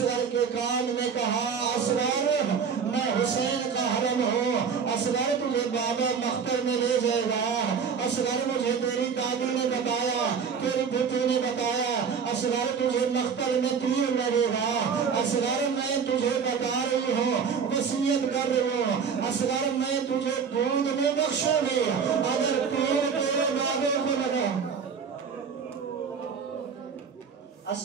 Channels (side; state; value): left; quieter; 6.4 dB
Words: کے کان میں کہا اصغر میں حسین کا حرم ہوں، اصغر تجھے بابا مختل میں لے جائے گا، اصغر مجھے تیری دادی نے بتایا، تیری بھوٹی نے بتایا، اصغر تجھے مختل میں تیر لگے گا، اصغر میں تجھے بتا رہی ہوں وصیت کر رہی ہوں، اصغر میں تجھے دودھ میں بخشوں گی اگر تیر تیرے بابے کو لگا۔